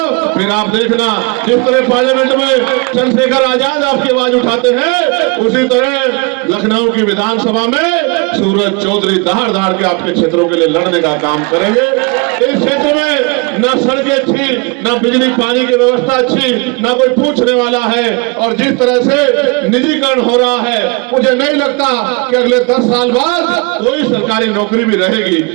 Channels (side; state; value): left; quieter; 29.8 dB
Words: फिर आप देखना जिस तरह पार्लियामेंट में चंद्रशेखर आजाद आपकी आवाज उठाते हैं, उसी तरह लखनऊ की विधानसभा में सूरज चौधरी दहाड़ दहाड़ के आपके क्षेत्रों के लिए लड़ने का काम करेंगे। इस क्षेत्र में ना सड़कें अच्छी, ना बिजली पानी की व्यवस्था अच्छी, ना कोई पूछने वाला है, और जिस तरह से निजीकरण हो रहा है, मुझे नहीं लगता कि अगले 10 साल बाद कोई सरकारी नौकरी भी रहेगी।